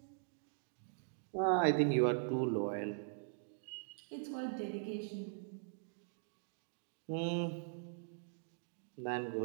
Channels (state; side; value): silent; left; digital silence